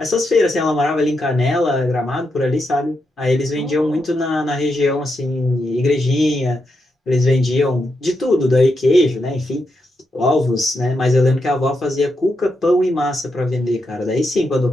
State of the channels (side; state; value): both; normal; correlation 0.84